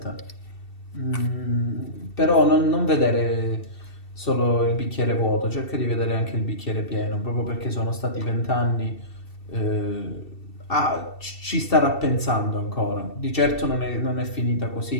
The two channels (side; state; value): right; late; 2.7 ms